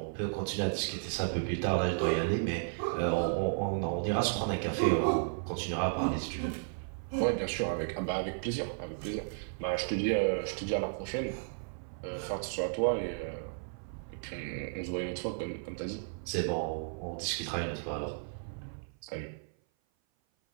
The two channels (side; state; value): left; silent; 55 dB below the other